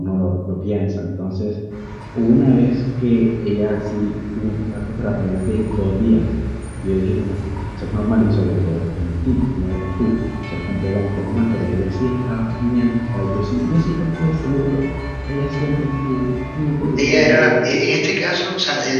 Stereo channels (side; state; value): both; identical; correlation 1.00